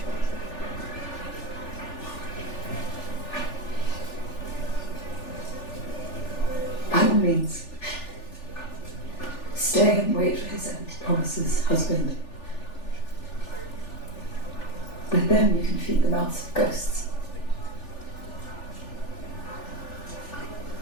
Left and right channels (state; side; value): late; right; 3.4 ms